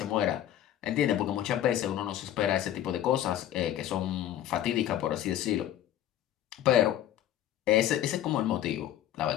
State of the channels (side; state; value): right; quieter; 12.0 dB